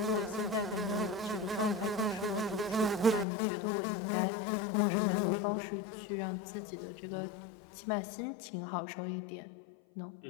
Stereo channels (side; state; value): right; drops out; at 3.2 s